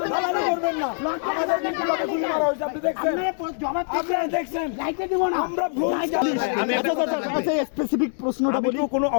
স্পেসিফিক প্রশ্নটা বলি, কোনো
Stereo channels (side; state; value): right; silent; 60 dB below the other